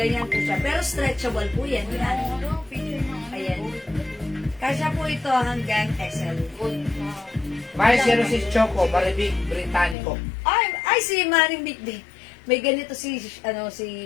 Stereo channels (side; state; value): right; drops out; at 10.0 s